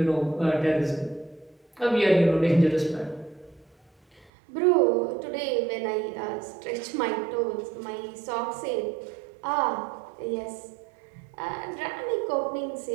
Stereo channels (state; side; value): drops out; left; at 4.3 s